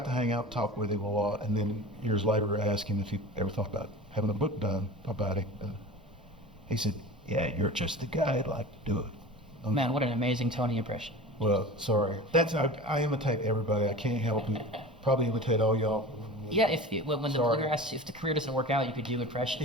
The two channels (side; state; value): both; normal; correlation 0.35